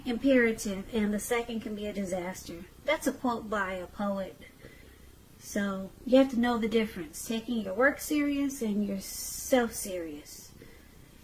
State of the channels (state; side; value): identical; both; correlation 1.00